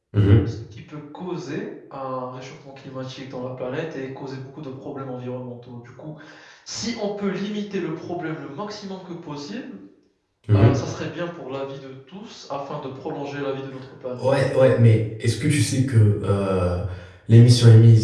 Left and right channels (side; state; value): both; identical; correlation 1.00